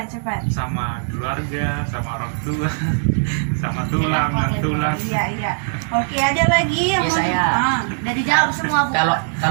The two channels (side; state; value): left; silent; 66 dB below the other